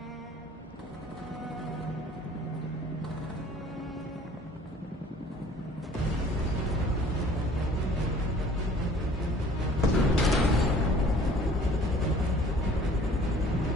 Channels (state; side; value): normal; both; correlation 0.52